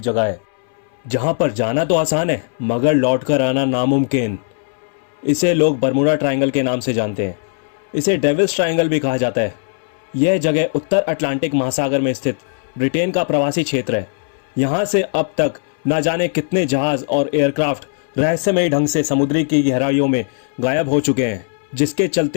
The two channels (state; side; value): silent; right; 64 dB below the other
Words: जगह है जहाँ पर जाना तो आसान है मगर लौट कर आना नामुमकिन। इसे लोग बरमूडा ट्रायंगल के नाम से जानते हैं। इसे डेविल्स ट्रायंगल भी कहा जाता है। यह जगह उत्तर अटलांटिक महासागर में स्थित ब्रिटेन का प्रवासी क्षेत्र है। यहाँ से अब तक न जाने कितने जहाज और एयरक्राफ्ट रहस्यमयी ढंग से समुद्री की गहराइयों में गायब हो चुके हैं, जिसके